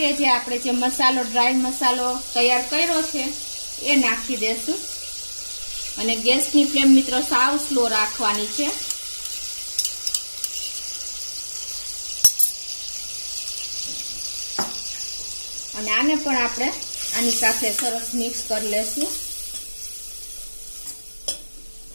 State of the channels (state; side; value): inverted; both; correlation -1.00